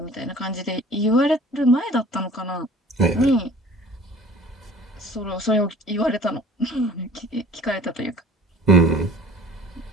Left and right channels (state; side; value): normal; both; correlation 0.48